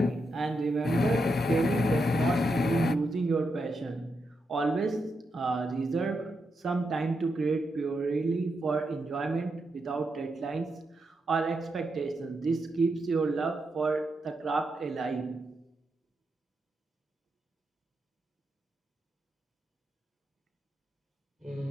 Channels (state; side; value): normal; both; correlation 0.84